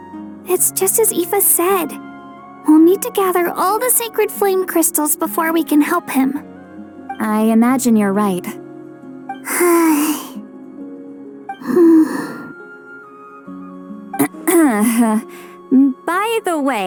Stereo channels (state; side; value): identical; both; correlation 1.00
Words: It's just as Aoife said. We'll need to gather all the sacred flame crystals before we can help him. I imagine you're right. By the